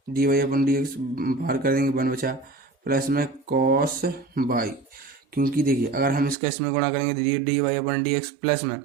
D Y upon D X बाहर कर देंगे 1 बचा, प्लस में कॉस वाई, क्योंकि देखिए अगर हम इसका इसमें गुणा करेंगे तो D Y upon D X plus में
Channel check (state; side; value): drops out; left; at 6.4 s